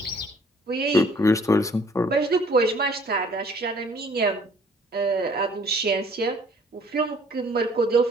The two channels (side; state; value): both; normal; correlation 0.57